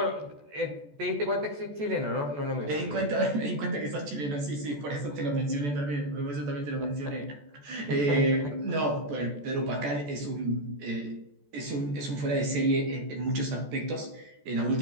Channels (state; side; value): late; left; 14 ms